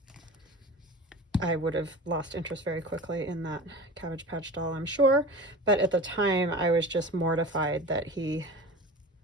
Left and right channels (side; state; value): both; normal; correlation 0.34